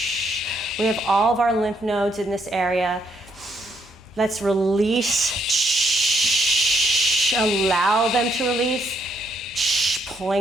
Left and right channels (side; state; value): both; normal; correlation 0.73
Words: We have all of our lymph nodes in this area. Let's release, allow them to release,